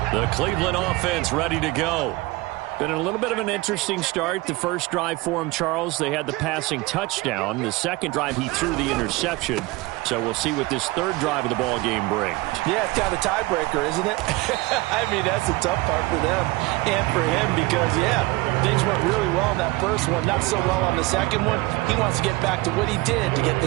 The Cleveland offense ready to go. Been a little bit of an interesting start. The first drive for him, Charles, they had the passing touchdown. The second drive, he threw the interception. So we'll see what this third drive of the ball game brings. Yeah, it's kind of a tiebreaker, isn't it? I mean, that's the tough part for them and for him because, yeah, things went really well in that first one, not so well on the second one. He wants to get back to what he did to get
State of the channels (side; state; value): left; quieter; 21.6 dB